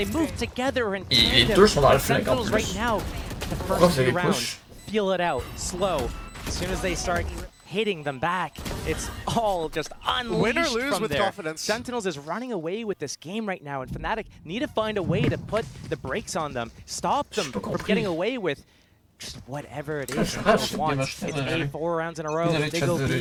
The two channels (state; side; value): identical; both; correlation 1.00